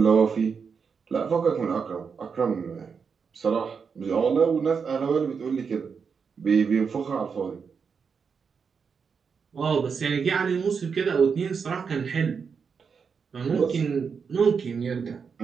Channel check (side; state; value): left; quieter; 6.0 dB